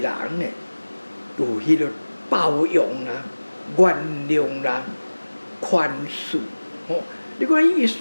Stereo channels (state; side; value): inverted; both; correlation -1.00